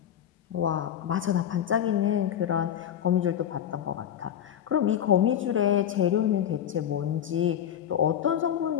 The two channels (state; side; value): quieter; right; 9.8 dB